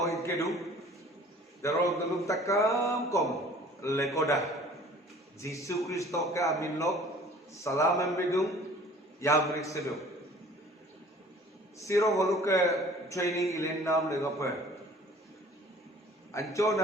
Ikedu, Dero Delu Takam Kom, Lekoda, Jisu Christo ka Aminlok, Salam Embidung. Yamrik sedo. Siro Moluke training ilen nam legape.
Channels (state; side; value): normal; both; correlation 0.49